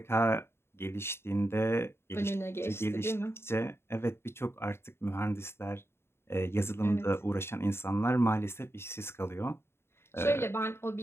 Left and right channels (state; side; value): late; right; 0.12 ms